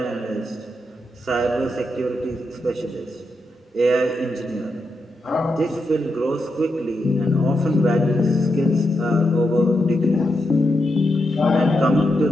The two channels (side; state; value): both; normal; correlation 0.85